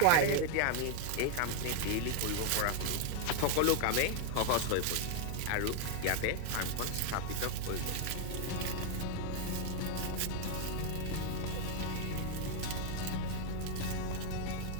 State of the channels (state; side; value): different; both; correlation 0.00